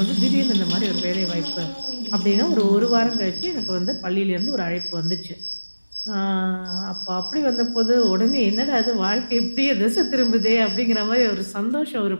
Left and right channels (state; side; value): inverted; both; correlation -1.00